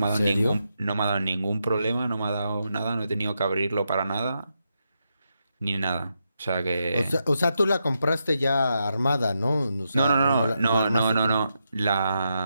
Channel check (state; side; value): inverted; both; correlation -0.84